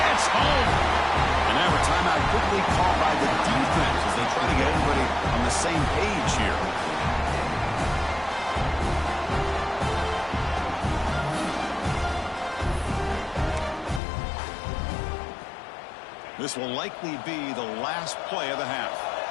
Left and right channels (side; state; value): right; drops out; at 14.0 s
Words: home. And now a timeout quickly called by the defense as they try to get everybody on the same page here. This will likely be the last play of the half.